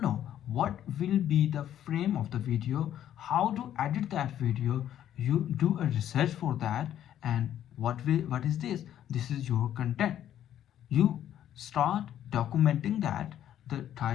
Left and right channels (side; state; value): right; quieter; 11.0 dB